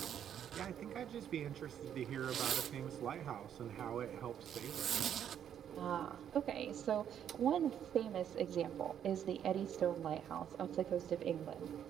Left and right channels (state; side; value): quieter; left; 9.4 dB